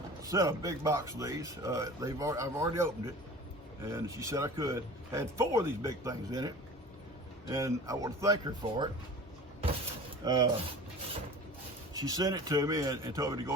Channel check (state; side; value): normal; both; correlation 0.39